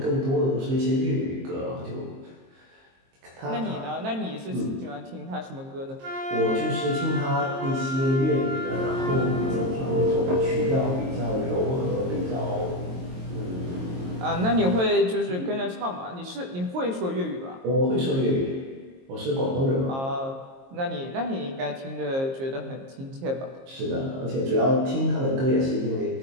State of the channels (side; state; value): left; late; 22 ms